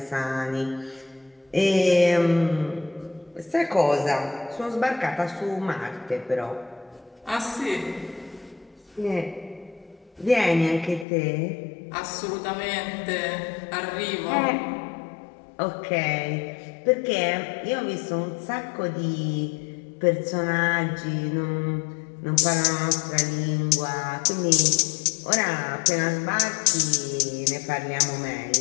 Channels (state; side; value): drops out; right; at 11.1 s